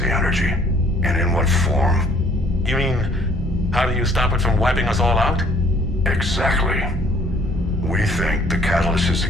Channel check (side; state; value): both; normal; correlation 0.59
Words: energy? And in what form? You mean, how do you stop it from wiping us all out? Exactly. We think the catalyst is the